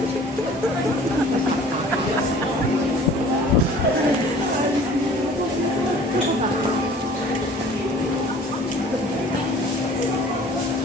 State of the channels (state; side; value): normal; both; correlation 0.49